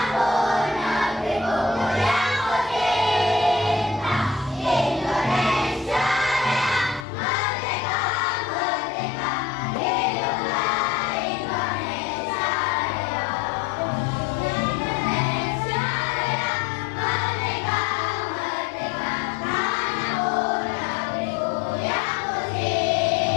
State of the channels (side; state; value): right; drops out; at 7.1 s